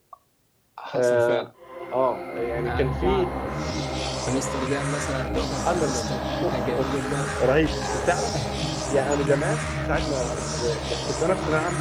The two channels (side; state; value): both; identical; correlation 1.00